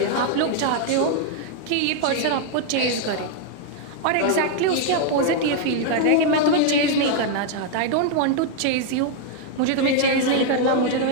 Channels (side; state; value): both; different; correlation 0.00